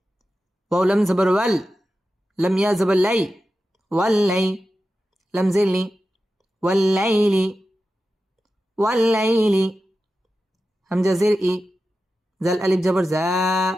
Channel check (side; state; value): both; normal; correlation 0.92